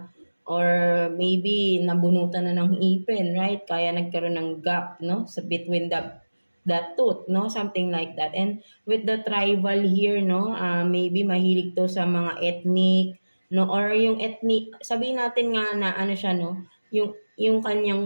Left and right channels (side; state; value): both; inverted; correlation -1.00